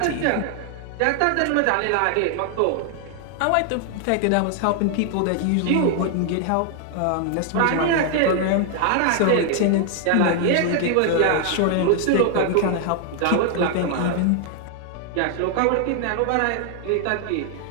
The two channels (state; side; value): different; both; correlation 0.00